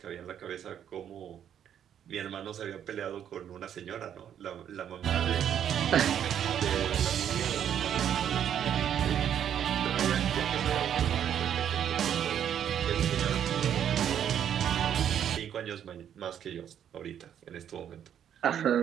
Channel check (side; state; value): left; quieter; 9.5 dB